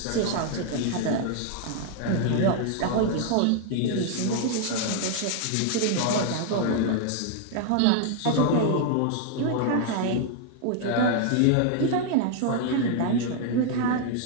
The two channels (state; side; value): different; both; correlation 0.00